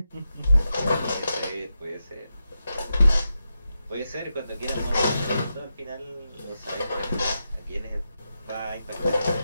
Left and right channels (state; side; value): inverted; both; correlation -0.88